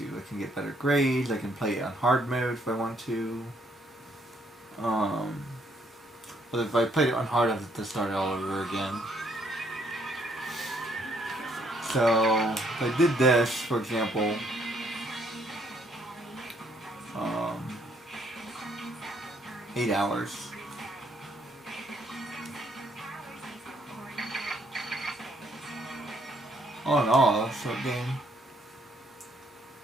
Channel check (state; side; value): normal; both; correlation 0.68